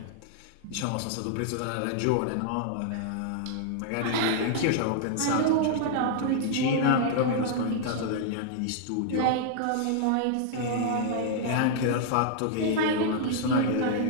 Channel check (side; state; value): both; different; correlation -0.01